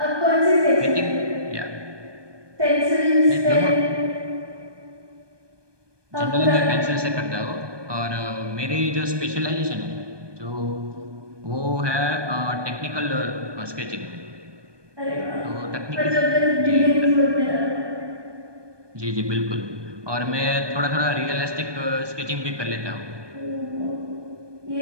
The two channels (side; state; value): left; late; 1.2 ms